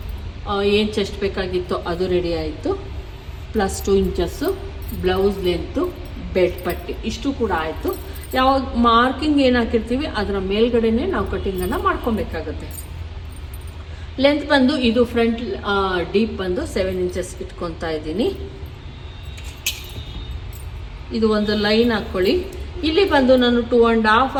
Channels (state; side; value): identical; both; correlation 1.00